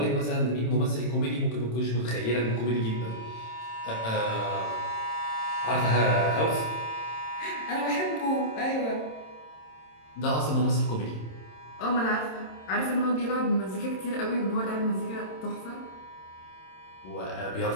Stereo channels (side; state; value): right; late; 26 ms